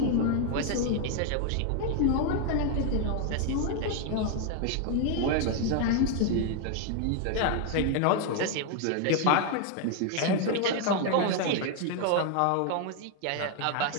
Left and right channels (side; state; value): both; different; correlation 0.00